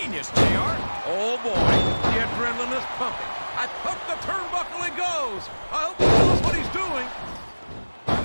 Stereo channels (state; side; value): inverted; both; correlation -1.00